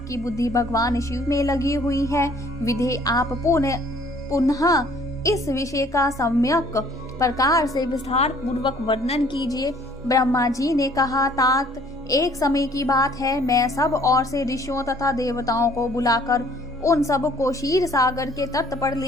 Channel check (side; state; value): both; normal; correlation 0.57